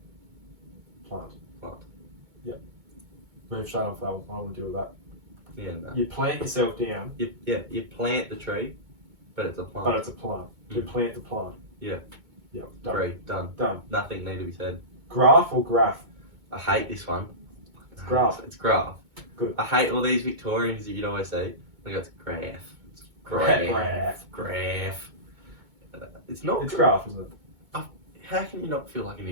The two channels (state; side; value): late; left; 2.2 ms